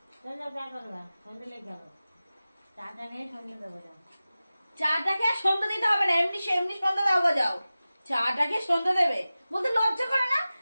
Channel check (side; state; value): both; inverted; correlation -0.96